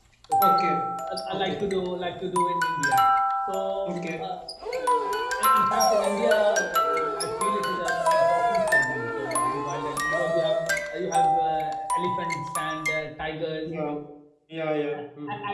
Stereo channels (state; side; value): identical; both; correlation 1.00